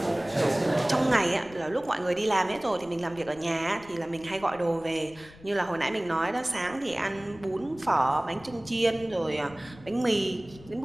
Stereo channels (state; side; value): noise; left; rumble, 21 dB below the sound